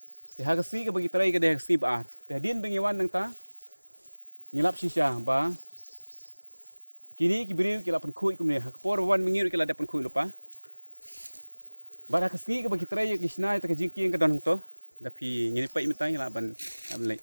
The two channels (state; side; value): inverted; both; correlation -1.00